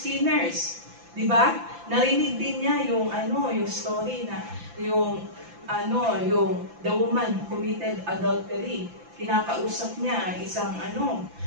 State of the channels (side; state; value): left; late; 5.9 ms